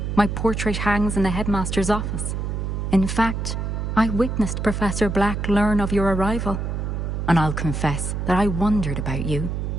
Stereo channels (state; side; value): noise; right; hum, 2 dB below the sound